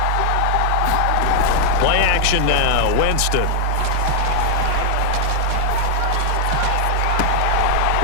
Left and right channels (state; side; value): different; both; correlation 0.00